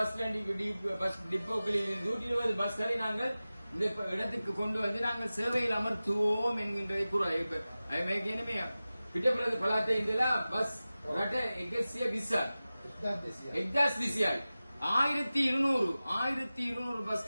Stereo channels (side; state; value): both; inverted; correlation -0.96